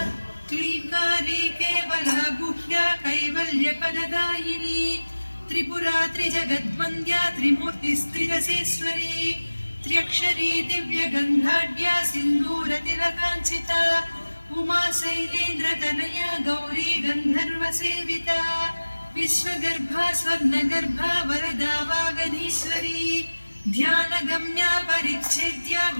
क्लींकारी केवला गुह्या कैवल्यपददायिनी त्रिपुरा त्रिजगद्वन्द्या त्रिमूर्तिस्त्रिदशेश्वरी त्र्यक्षरी दिव्यगन्धाढ्या सिन्दूरतिलकाञ्चिता उमा शैलेन्द्रतनया गौरी गन्धर्वसेविता विश्वगर्भा स्वर्णगर्भा वरदा वागधीश्वरी ध्यानगम्या परिच्छेद्या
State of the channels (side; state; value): both; inverted; correlation -1.00